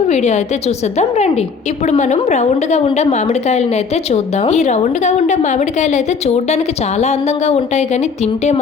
వీడియో అయితే చూసేద్దాం రండి. ఇప్పుడు మనం రౌండ్ గా ఉండే మామిడికాయలను అయితే చూద్దాం. ఈ రౌండ్ గా ఉండే మామిడికాయలు అయితే చూడడానికి చాలా అందంగా ఉంటాయి కానీ తింటే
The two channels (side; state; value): right; quieter; 5.3 dB